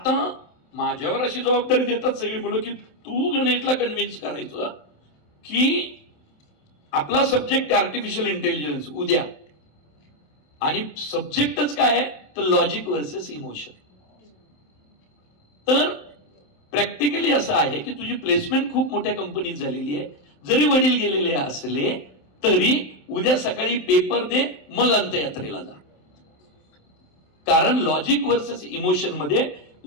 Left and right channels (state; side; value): late; right; 27 ms